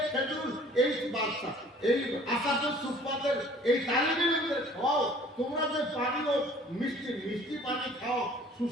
খেজুর এই বাচ্চা এই আসামে সুফফাদের এই তালিবে ইলমের খাও। তোমরা যে পানীয় মিষ্টি পানি খাও,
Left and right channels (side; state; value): both; normal; correlation 0.52